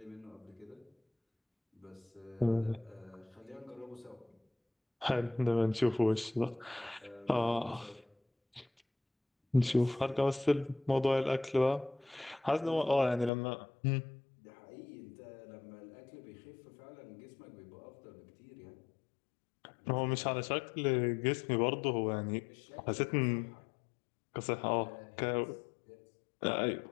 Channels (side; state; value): right; drops out; at 13.3 s